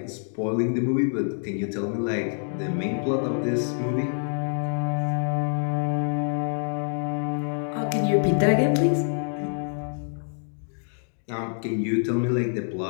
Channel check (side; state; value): right; silent; 61 dB below the other